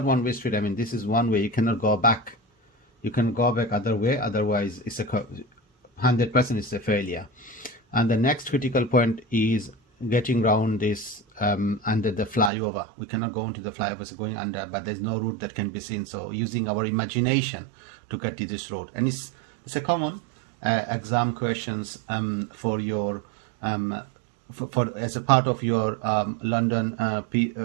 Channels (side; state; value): left; drops out; at 12.5 s